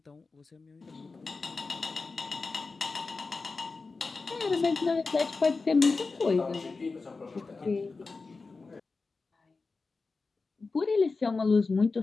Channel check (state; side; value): quieter; right; 4.0 dB